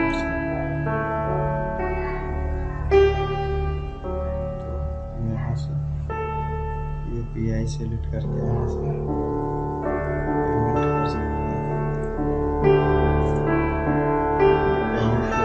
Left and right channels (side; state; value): both; identical; correlation 1.00